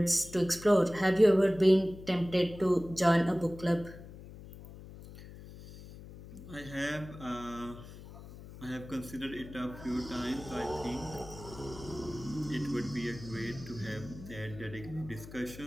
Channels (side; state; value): left; noise; hum, 15 dB below the sound